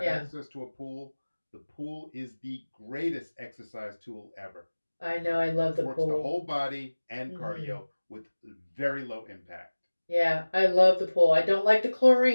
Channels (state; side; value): inverted; both; correlation -1.00